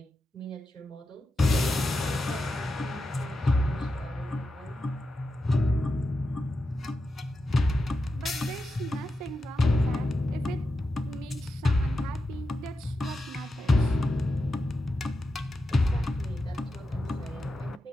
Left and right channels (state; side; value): normal; both; correlation 0.89